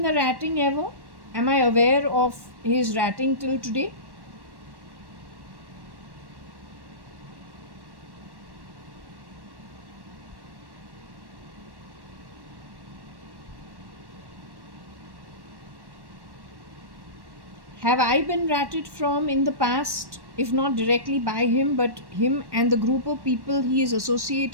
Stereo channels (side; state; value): left; late; 1.1 ms